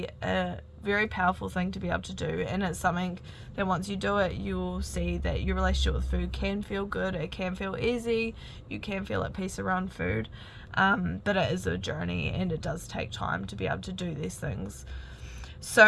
a very powerful thing to be able to do, and it's something that once you do it, you'll see that your relationship with food can feel good, it can feel easy, you can feel at peace around food, but it is a journey and it does take time to be able to do these things.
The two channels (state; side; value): identical; both; correlation 1.00